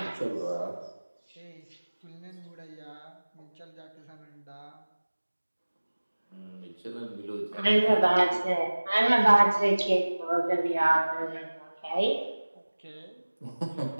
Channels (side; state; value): both; inverted; correlation -1.00